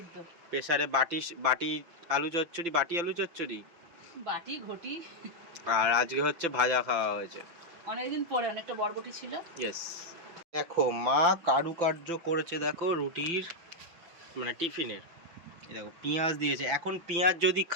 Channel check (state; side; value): late; left; 5.9 ms